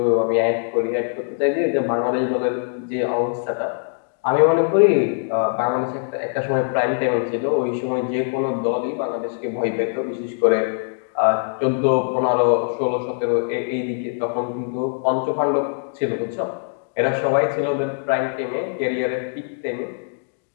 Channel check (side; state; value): right; silent; digital silence